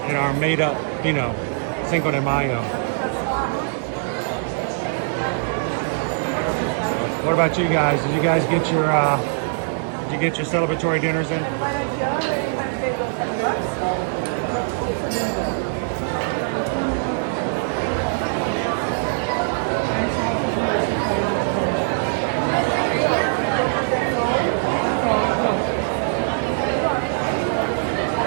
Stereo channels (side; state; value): left; silent; digital silence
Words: in our made-up, you know, Cinco de Mayo. What about you guys? Did you guys get your celebratory dinners in?